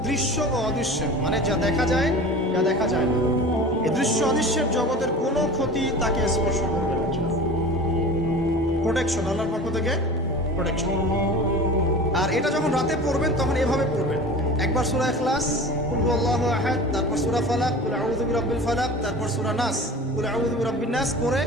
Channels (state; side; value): normal; both; correlation 0.37